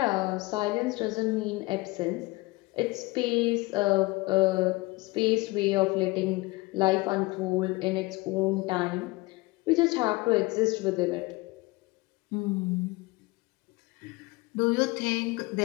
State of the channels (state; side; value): quieter; right; 22.7 dB